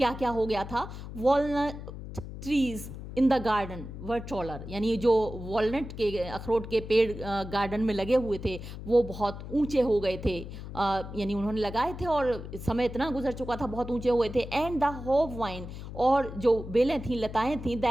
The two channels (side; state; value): left; noise; hum, 10 dB below the sound